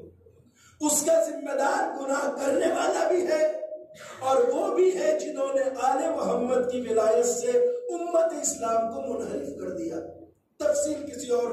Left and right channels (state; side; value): identical; both; correlation 1.00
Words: اس کا ذمہ دار گناہ کرنے والا بھی ہے، اور وہ بھی ہے جنہوں نے آل محمد کی ولایت سے امت اسلام کو منحرف کر دیا۔ تفصیل کسی اور